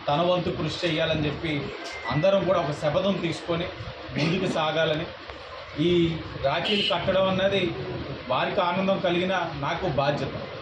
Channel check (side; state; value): both; identical; correlation 1.00